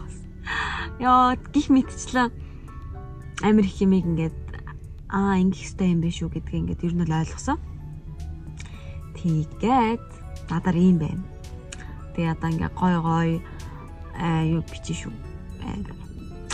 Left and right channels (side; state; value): both; identical; correlation 1.00